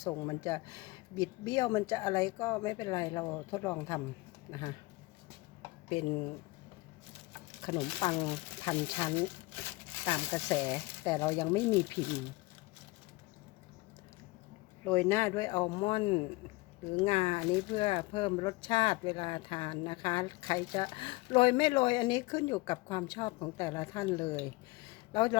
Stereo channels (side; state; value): right; quieter; 22.7 dB